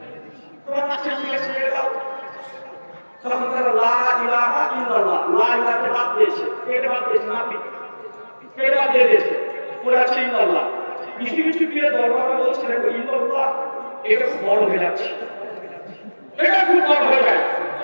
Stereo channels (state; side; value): inverted; both; correlation -1.00